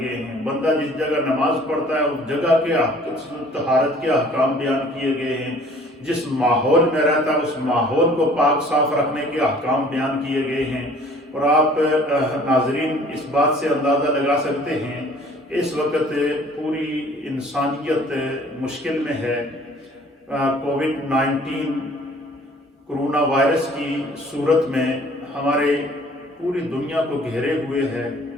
ہیں، بندہ جس جگہ نماز پڑھتا ہے اس جگہ کے طہارت کے احکام بیان کیے گئے ہیں، جس ماحول میں رہتا ہے اس ماحول کو پاک صاف رکھنے کے احکام بیان کیے گئے ہیں۔ اور آپ ناظرین اس بات سے اندازہ لگا سکتے ہیں اس وقت پوری انسانیت مشکل میں ہے۔ کووڈ-19 کرونا وائرس کی صورت میں ہمارے پوری دنیا کو گھیرے ہوئے ہے،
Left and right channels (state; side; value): normal; both; correlation 0.53